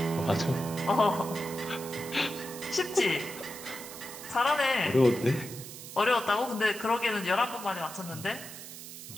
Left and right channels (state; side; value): noise; right; hiss, 12 dB below the sound